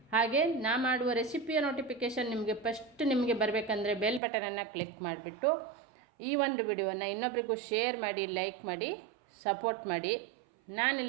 ಹಾಗೆ ನಾ ಮಾಡುವ ರೆಸಿಪಿಯ ನೋಟಿಫಿಕೇಷನ್ ನಿಮಗೆ ಬರಬೇಕಂದ್ರೆ ಬೆಲ್ ಬಟನನ್ನು ಕ್ಲಿಕ್ ಮಾಡಿಬಿಟ್ಟು ಈ ಒಂದು ವಿಡಿಯೋವನ್ನು ಇನ್ನೊಬ್ಬರಿಗೂ ಶೇರ್ ಮಾಡಿ, ಲೈಕ್ ಮಾಡಿ, ಸಪೋರ್ಟ್ ಮಾಡಿ.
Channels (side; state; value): left; drops out; at 4.2 s